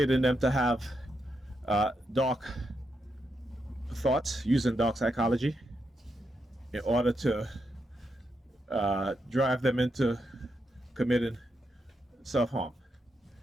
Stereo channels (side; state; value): both; normal; correlation 0.83